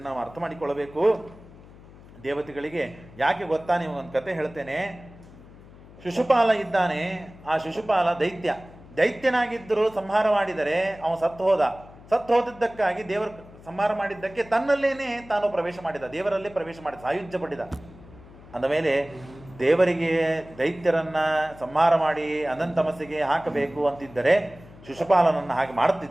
ನಾವು ಅರ್ಥ ಮಾಡಿಕೊಳ್ಳಬೇಕು. ದೇವತೆಗಳಿಗೆ ಯಾಕೆ ಗೊತ್ತಾ? ನೀವು ಒಂದು ಕತೆ ಹೇಳ್ತೇನೆ. ಶಿಶುಪಾಲ ಇದ್ದಾನೆ. ಆ ಶಿಶುಪಾಲ ದೈತ್ಯನಾಗಿದ್ದರೂ ಸಂಹಾರ ಮಾಡಿದರೆ ಅವನು ಸತ್ತು ಹೋದದ್ದಕ್ಕಾಗಿ ದೇವರು ಸಂಹಾರ ಮಾಡಿದ್ದಕ್ಕೆ ತನ್ನಲ್ಲೇನೆ ತಾನು ಪ್ರವೇಶ ಮಾಡಿದ, ದೇವರಲ್ಲಿ ಪ್ರವೇಶ ಮಾಡಿದ, ಸಾಯುಜ್ಯ ಪಡಿದ. ಅಂದಮೇಲೆ ದೇವರಿಗೆ ದೈತ್ಯರನ್ನ ಸಂಹಾರ ಮಾಡಿ ಅನಂತಮಸ್ಸಿಗೆ ಹಾಕಬೇಕು ಅಂತಿದ್ದರೆ ಶಿಶುಪಾಲನನ್ನು ಹಾಗೆ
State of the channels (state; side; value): noise; left; hum, 21 dB below the sound